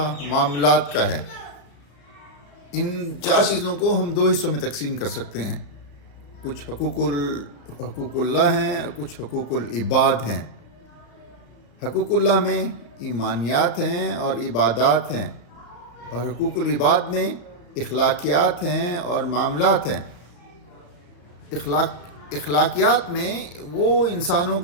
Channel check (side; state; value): right; late; 34 ms